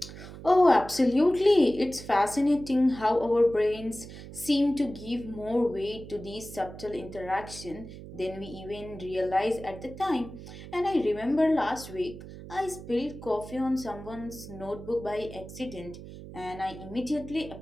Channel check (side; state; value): right; noise; hum, 14 dB below the sound